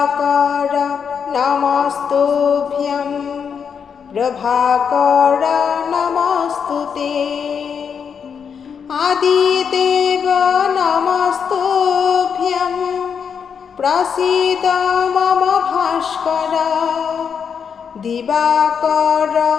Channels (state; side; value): quieter; right; 6.9 dB